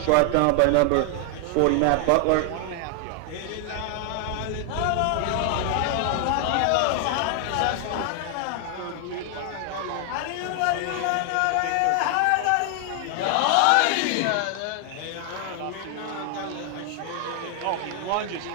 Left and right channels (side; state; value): both; different; correlation 0.00